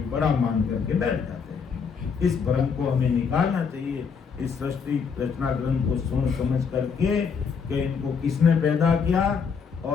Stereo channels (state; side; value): quieter; right; 6.0 dB